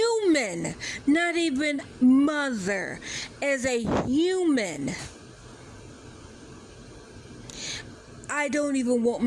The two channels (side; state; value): both; identical; correlation 1.00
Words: not even mother, as a human, I don't even want